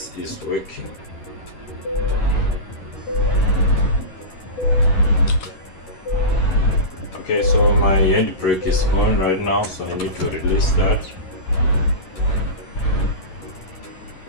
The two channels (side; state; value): right; late; 11 ms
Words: is working. Okay, so my handbrake is on right now, so I need to release that.